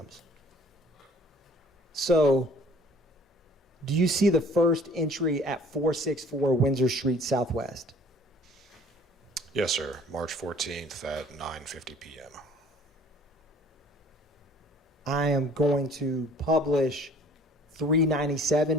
So, do you see the first entry at 464 Windsor Street Southwest? Yes, sir. March 14th at 9:50 p.m. I am going to publish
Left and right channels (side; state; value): both; normal; correlation 0.52